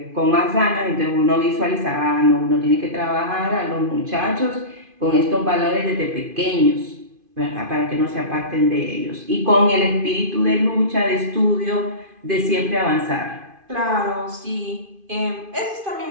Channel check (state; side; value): late; left; 2.5 ms